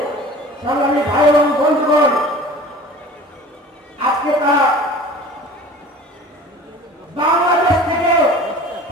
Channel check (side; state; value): both; normal; correlation 0.42